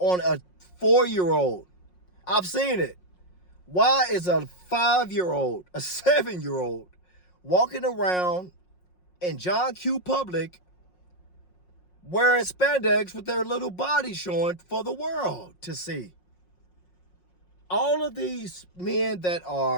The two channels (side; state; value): right; late; 5.5 ms